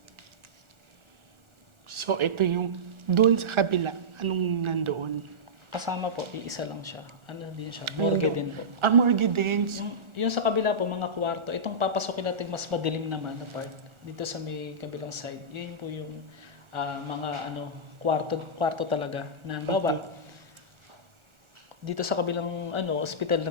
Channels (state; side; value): late; left; 1.4 ms